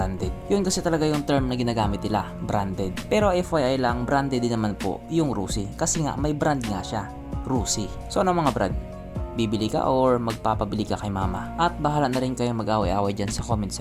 Yun kasi talaga yung term na ginagamit nila, branded. Pero FYI lang, branded din naman po yung Rusi kasi nga may brand nga siya, Rusi. So ano mga brad, bibili ka or magpapabili ka kay mama? At bahala na rin kayo mag-away-away dyan sa comment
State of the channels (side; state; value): both; identical; correlation 1.00